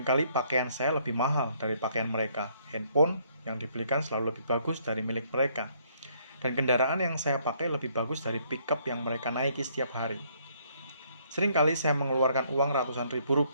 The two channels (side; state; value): both; inverted; correlation -0.67